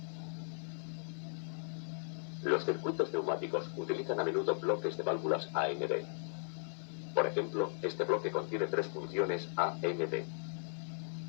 Los circuitos neumáticos utilizan a menudo bloques de válvulas AND. Por ejemplo, este bloque contiene tres funciones AND.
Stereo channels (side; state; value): right; silent; 53 dB below the other